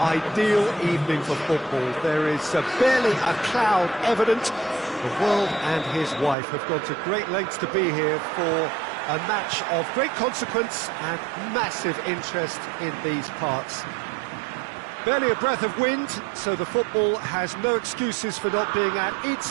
evening for football. There is barely a cloud evident. The world and his wife have gone to great lengths to be here for a match of great consequence and massive interest in these parts. Barely a breath of wind, so the football has no excuses for not being at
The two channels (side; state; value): left; drops out; at 6.4 s